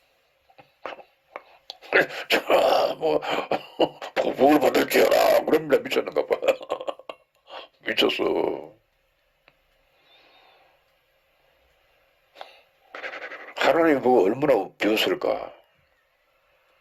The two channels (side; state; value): both; identical; correlation 1.00